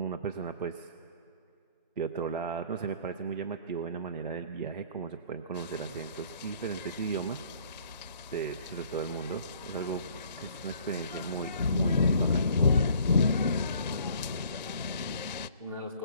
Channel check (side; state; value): both; inverted; correlation -0.56